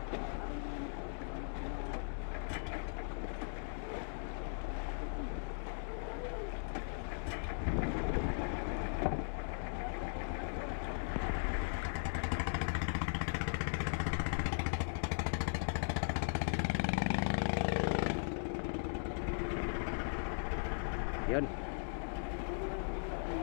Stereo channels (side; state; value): right; silent; digital silence